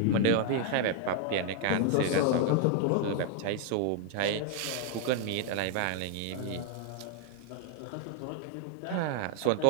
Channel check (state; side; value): different; both; correlation 0.00